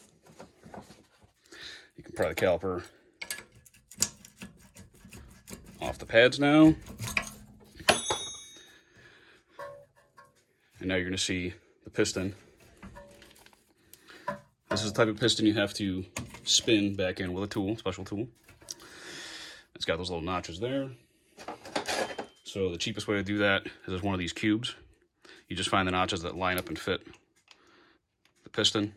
You can pry the caliper off the pads now. And now you're going to see the piston. This is the type of piston you have to spin back in with a tool, special tool. It's got those little notches there. So the cheapest way to do that is with one of these cubes. You just find the notches that line up and fit the piston,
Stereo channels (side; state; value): both; identical; correlation 1.00